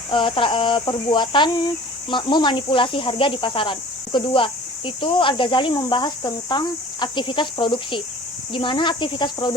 perbuatan memanipulasi harga di pasaran. Kedua, itu Al-Ghazali membahas tentang aktivitas produksi, di mana aktivitas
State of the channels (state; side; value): normal; both; correlation 0.45